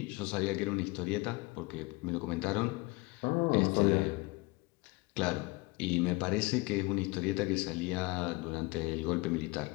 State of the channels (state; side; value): quieter; right; 24.6 dB